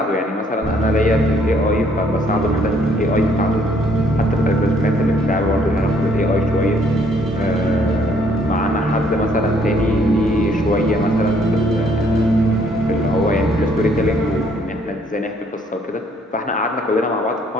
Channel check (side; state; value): both; normal; correlation 0.65